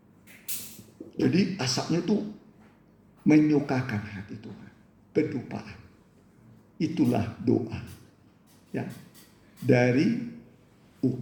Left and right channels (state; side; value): identical; both; correlation 1.00